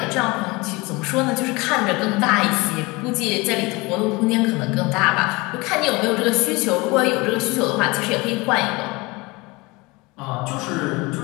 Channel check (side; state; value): right; quieter; 24.1 dB